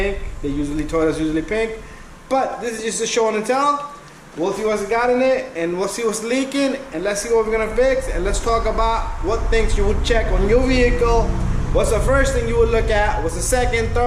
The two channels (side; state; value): both; identical; correlation 1.00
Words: Toyota's usually pink. But this is just a show and tell. We'll see what's got in it, and we'll see what's leaking, and let's see what we're gonna fix, and let's talk about what things you would check on your vehicle. What's the first thing you would look at? What's the second,